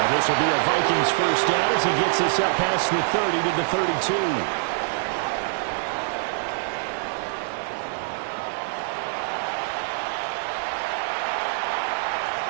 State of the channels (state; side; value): silent; left; digital silence